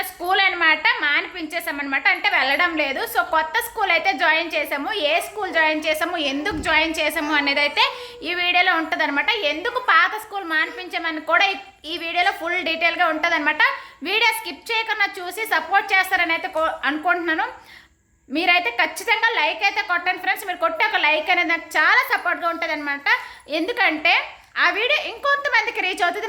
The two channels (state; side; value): identical; both; correlation 1.00